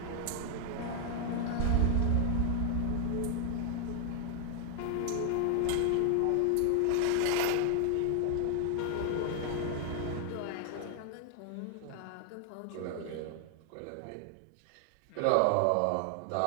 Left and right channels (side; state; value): both; different; correlation 0.00